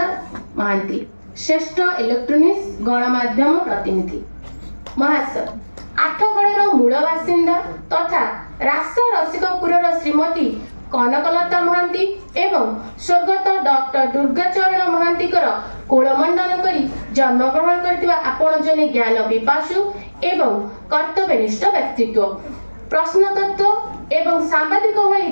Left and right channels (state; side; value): inverted; both; correlation -1.00